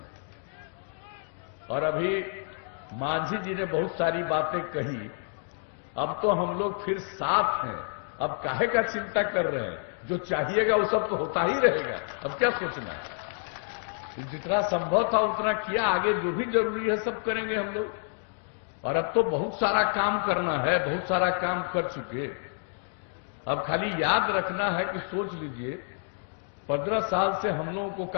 और अभी मांझी जी ने बहुत सारी बातें कही, अब तो हम लोग फिर साथ हैं, अब काहे का चिंता कर रहे हैं, जो चाहिएगा वो सब तो होता ही रहेगा, अब क्या सोचना है। जितना संभव था उतना किया, आगे जो भी जरूरी है सब करेंगे हम लोग। और अब तो बहुत सारा काम करना है, बहुत सारा काम कर चुके, अब खाली याद रखना है कि सोच लीजिए 15 साल से हम लोगों को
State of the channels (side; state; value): right; silent; 58 dB below the other